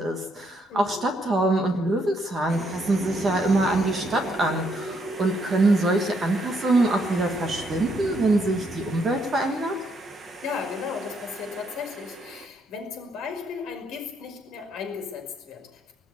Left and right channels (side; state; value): both; normal; correlation 0.73